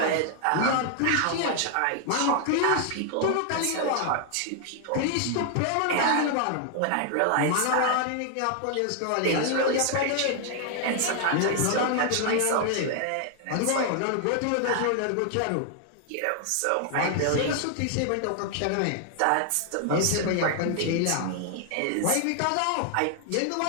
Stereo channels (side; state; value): both; different; correlation 0.00